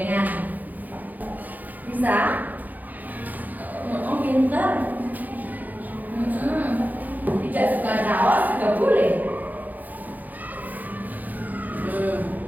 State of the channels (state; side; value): late; left; 0.082 ms